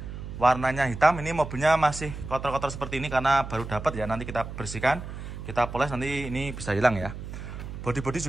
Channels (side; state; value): right; noise; hum, 9 dB below the sound